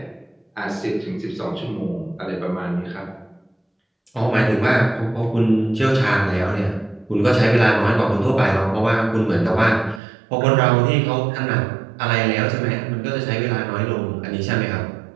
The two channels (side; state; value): left; drops out; at 10.0 s